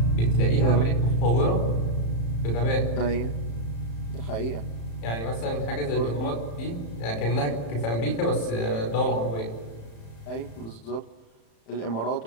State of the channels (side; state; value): right; late; 35 ms